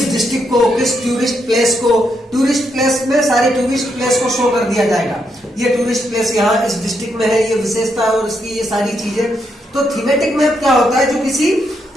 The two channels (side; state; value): both; normal; correlation 0.79